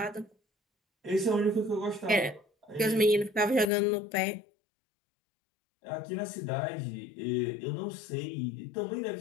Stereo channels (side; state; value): right; drops out; at 3.7 s